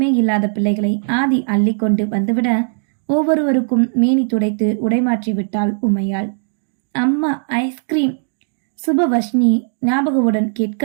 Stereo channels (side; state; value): left; silent; 68 dB below the other